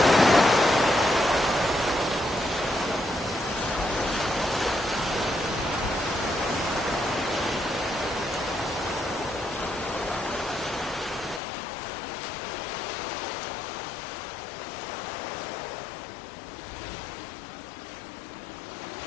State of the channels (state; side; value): drops out; right; at 11.4 s